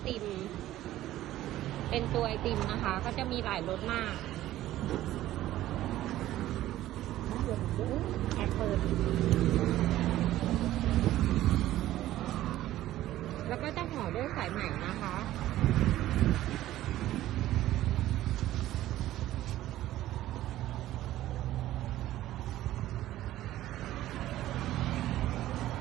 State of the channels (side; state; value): left; quieter; 14.4 dB